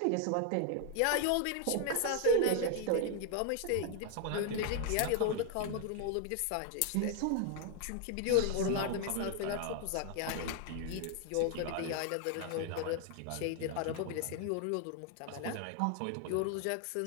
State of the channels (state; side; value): different; both; correlation 0.00